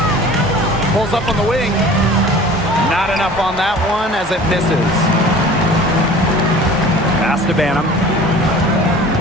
Pulls up on the wing. Not enough on that one as it misses. Pass to Banham.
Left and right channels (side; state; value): right; noise; hum, 17 dB below the sound